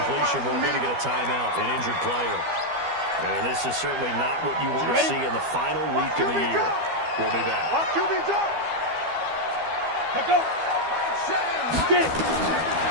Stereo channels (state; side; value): late; left; 12 ms